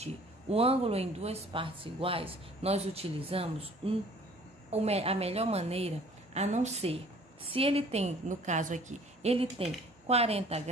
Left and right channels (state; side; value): normal; both; correlation 0.52